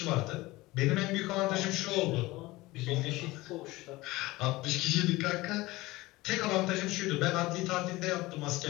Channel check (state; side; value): quieter; right; 20.0 dB